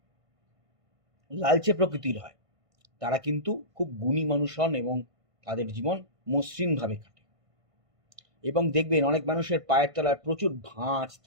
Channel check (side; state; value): left; late; 1.5 ms